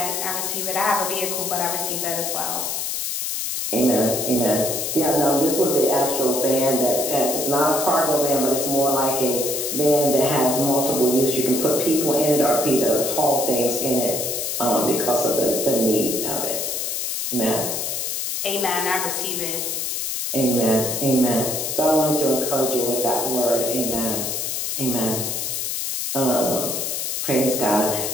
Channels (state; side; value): noise; left; hiss, 2 dB below the sound